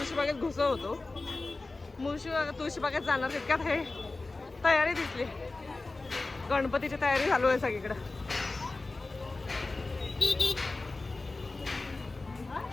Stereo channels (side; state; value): right; quieter; 3.3 dB